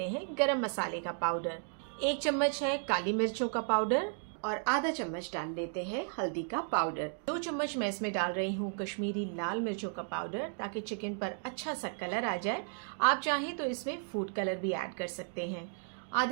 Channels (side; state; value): left; silent; 55 dB below the other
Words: हैं गरम मसाले का पाउडर। एक चम्मच है काली मिर्चों का पाउडर और आधा चम्मच डाल लेते हैं हल्दी का पाउडर। 2 चम्मच मैं इसमें डाल रही हूँ कश्मीरी लाल मिर्चों का पाउडर, ताकि चिकन पर अच्छा सा कलर आ जाए। आप चाहें तो इसमें फूड कलर भी ऐड कर सकते हैं।